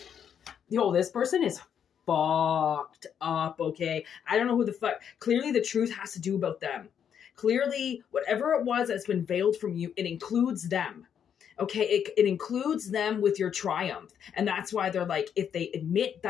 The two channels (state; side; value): quieter; right; 8.3 dB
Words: Yo, this person is fucked up, okay? I don't know who the fuck. Clearly the truth has to do about them. Clearly, whatever it was that's been veiled from you, it includes them. Okay, it includes them with your triumph. And that's why they're like, if they admit